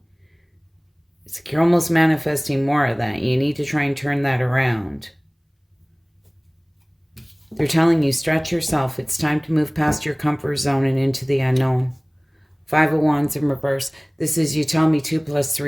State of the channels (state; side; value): identical; both; correlation 1.00